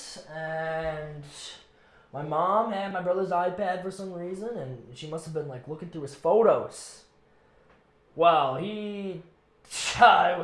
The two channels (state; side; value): identical; both; correlation 1.00